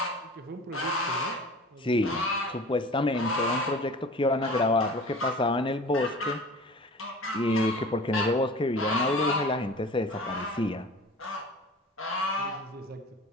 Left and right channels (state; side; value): normal; both; correlation 0.40